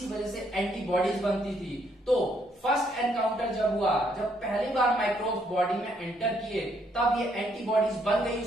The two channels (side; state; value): both; normal; correlation 0.71